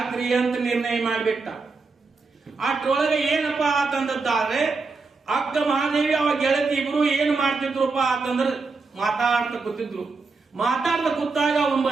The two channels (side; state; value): left; quieter; 4.2 dB